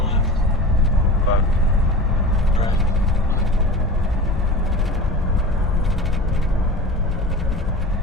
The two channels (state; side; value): normal; both; correlation 0.34